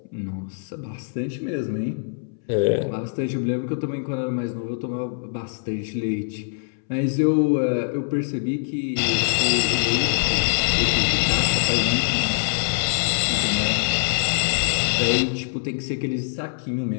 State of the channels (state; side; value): silent; right; 63 dB below the other